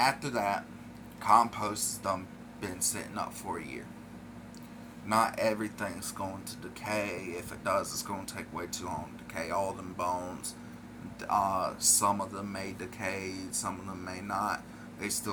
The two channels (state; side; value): identical; both; correlation 1.00